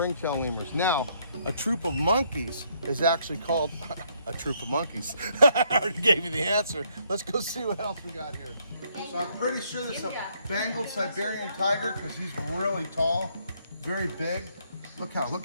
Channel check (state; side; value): inverted; both; correlation -0.70